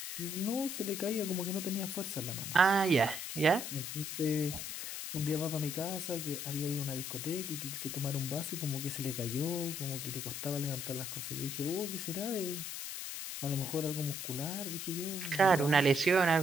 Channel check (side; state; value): left; noise; hiss, 5 dB below the sound